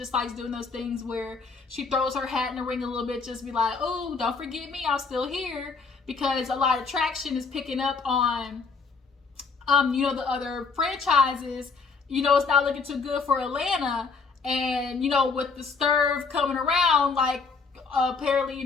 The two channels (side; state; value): right; quieter; 4.7 dB